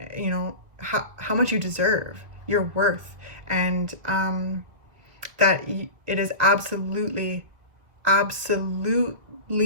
you know, how much you deserve, your worth, and that it is absolutely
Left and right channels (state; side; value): late; left; 1.7 ms